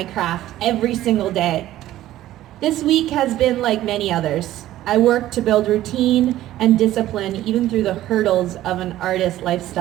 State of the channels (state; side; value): quieter; left; 14.2 dB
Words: craft every single day. This week has been like many others. I work to build routine and discipline even through the hurdles of an artist